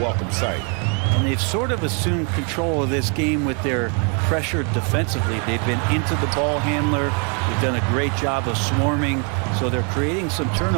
sight. And they've sort of assumed control of this game with their pressure defensively. They've been into the ball handler. They've done a great job of swarming, so they're creating some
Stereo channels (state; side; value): quieter; left; 36.6 dB